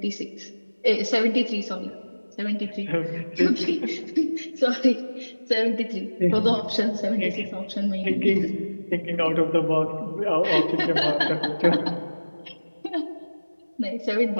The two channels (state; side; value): inverted; both; correlation -1.00